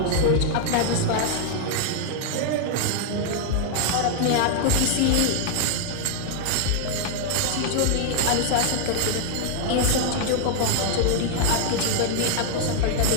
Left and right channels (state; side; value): different; both; correlation 0.00